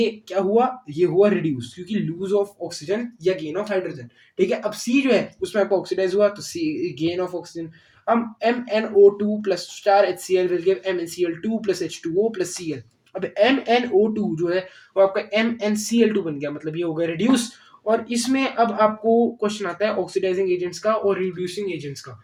क्या हुआ, ये हुआ रिड्यूस, क्योंकि लूज ऑफ ऑक्सीजन या गेन ऑफ हाइड्रोजन, ठीक है। अब C जो है उसमें आपको ऑक्सीडाइज हुआ, तो C गेन ऑफ ऑक्सीजन। अब MnO2 plus star HCl will give MnCl2 plus H2O plus Cl। अब MnO2 जो है वो आपका MnCl2 बन गया, मतलब ये हो गया रिड्यूस। और इसमें अब आपको क्वेश्चन आता है ऑक्सीडाइजिंग एजेंट्स का और रिड्यूसिंग एजेंट्स का।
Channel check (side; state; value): both; identical; correlation 1.00